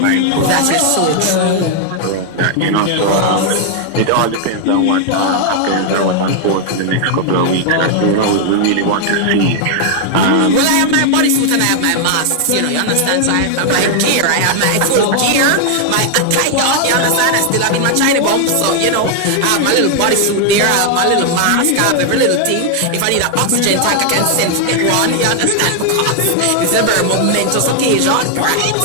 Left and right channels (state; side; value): different; both; correlation 0.00